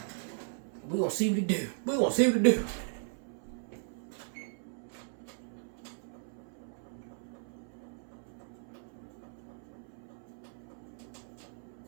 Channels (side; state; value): left; silent; 53 dB below the other